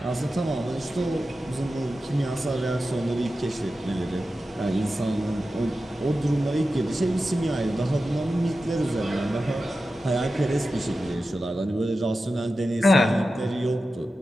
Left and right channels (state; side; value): normal; both; correlation 0.93